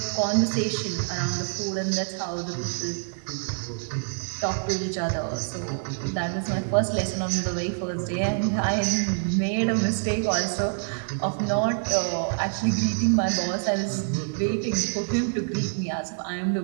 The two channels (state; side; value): silent; left; digital silence